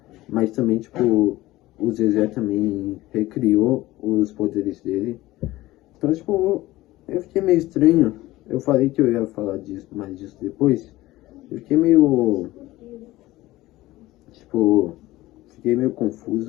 mas também, tipo, o Zezé também recriou os poderes dele. Então, tipo, eu fiquei meio estranho. Eu falei que eu ia falar mais disso depois. Eu fiquei meio... Tipo, fiquei meio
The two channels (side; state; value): right; quieter; 17.6 dB